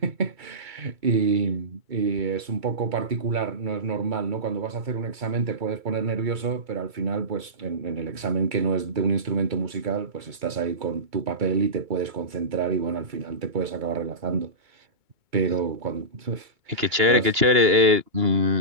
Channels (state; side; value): late; left; 2.3 ms